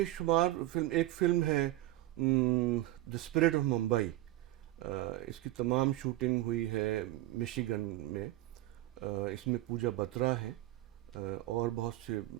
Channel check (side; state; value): left; quieter; 16.3 dB